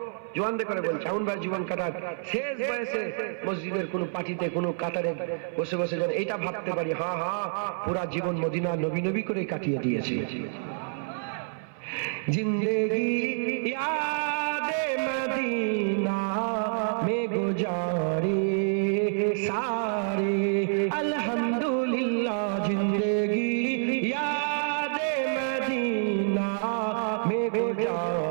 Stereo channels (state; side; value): silent; left; 57 dB below the other